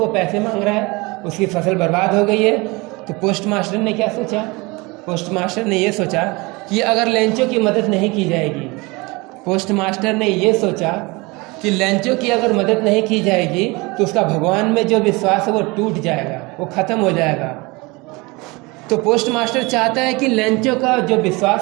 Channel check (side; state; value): left; quieter; 24.9 dB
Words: पैसे मांग रहा है, उसकी फसल बर्बाद हो गई है। तो पोस्ट मास्टर ने क्या सोचा? पोस्ट मास्टर ने ये सोचा कि अगर लेंचो की मदद नहीं की जाएगी, पोस्ट मास्टर ने ये सोचा कि लेंचो की अगर मदद नहीं की जाएगी तो उसका भगवान में जो विश्वास है वो टूट जाएगा, वो ख़त्म हो जाएगा। तो पोस्ट मास्टर चाहता है कि लेंचो का जो